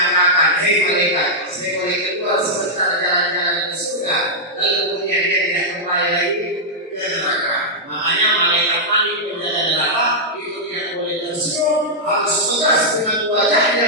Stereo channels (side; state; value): both; normal; correlation -0.07